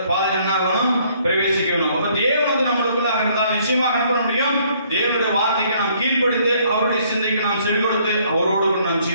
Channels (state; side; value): inverted; both; correlation -0.64